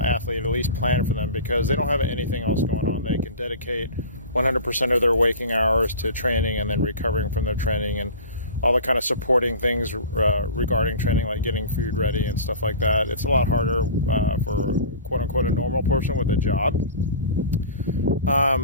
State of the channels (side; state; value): both; inverted; correlation -0.37